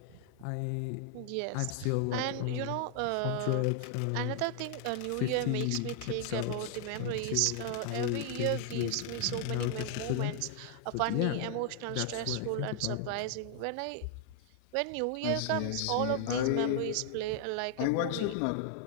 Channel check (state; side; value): different; both; correlation 0.00